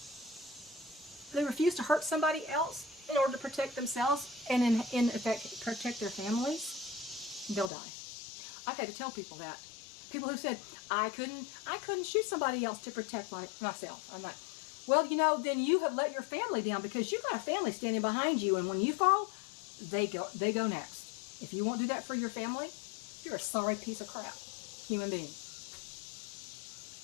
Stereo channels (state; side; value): drops out; right; at 7.7 s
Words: they refuse to hurt somebody else in order to protect themselves and in effect protect their families, they'll die. I've had to tell people that. People who said, I couldn't shoot somebody else to protect myself. I'm like, well, you know, then you have let your family down, because you've got a family standing behind you, and when you fall, they go next. If you won't do that for your family, you're a sorry piece of crap human being.